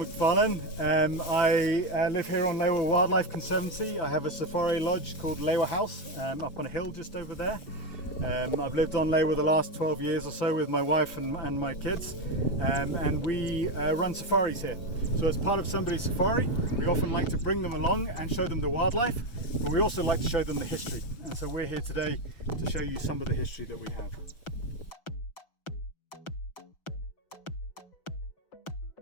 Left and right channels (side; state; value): right; late; 6.0 ms